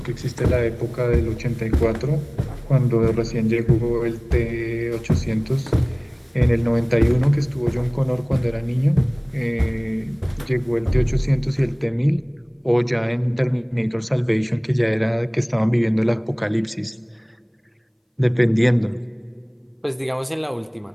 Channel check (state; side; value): identical; both; correlation 1.00